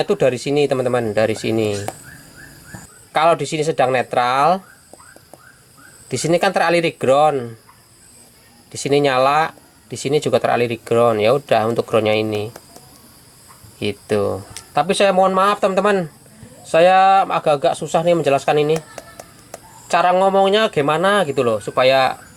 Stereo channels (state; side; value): identical; both; correlation 1.00